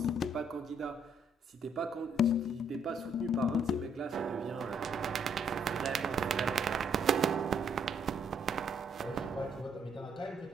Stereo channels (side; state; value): both; normal; correlation 0.69